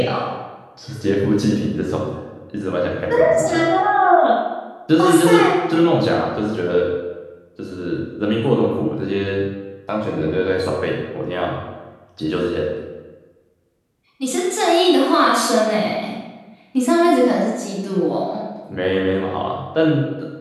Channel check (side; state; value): both; identical; correlation 1.00